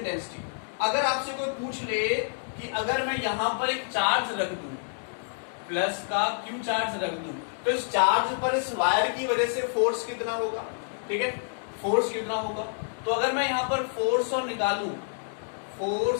अगर आपसे कोई पूछ ले कि अगर मैं यहां पर एक चार्ज रख दूं, प्लस का क्यू चार्ज रख दूं, तो इस चार्ज पर इस वायर की वजह से फोर्स कितना होगा, ठीक है, फोर्स कितना होगा। तो अगर मैं यहां पर फोर्स और निकालूं,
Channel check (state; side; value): silent; right; digital silence